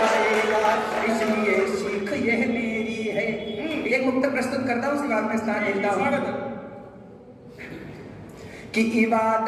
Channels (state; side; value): identical; both; correlation 1.00